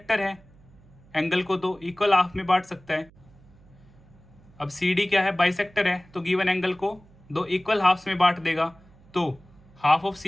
है, एंगल को तो इक्वल हाफ में बांट सकता है। अब सी डी क्या है, बाइसेक्टर है, तो गिवन एंगल को दो इक्वल हाफ्स में बांट देगा। तो हाफ ऑफ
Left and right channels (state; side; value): noise; right; hum, 26 dB below the sound